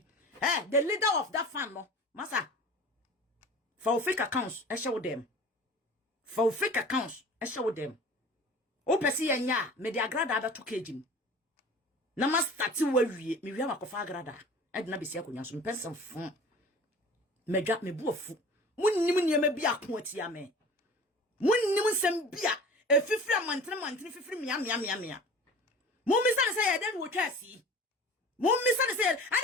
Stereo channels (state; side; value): normal; both; correlation 0.41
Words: the leader of that fan no masa for fake accounts e show them for fake accounts e show them o pesi yenya me de agrada ada to kejim na ma start wawie me wi makofa agrada edna besi akonya so mpensem fun medwa me buofu munnim niema bi akoatia me munnim nsem bia efifiri amantene fifiri mia mummisa ne say ye den wo twasi mummisa ne say